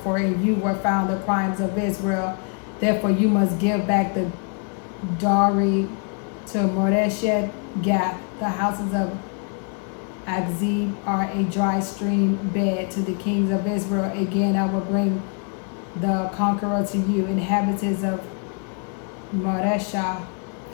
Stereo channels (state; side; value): quieter; right; 37.9 dB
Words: for in you were found the crimes of Israel. Therefore you must give back the dowry to Moreshet Gath. The houses of Akzib are a dry stream bed to the kings of Israel. Again I will bring the conqueror to you, inhabitants of Moresha.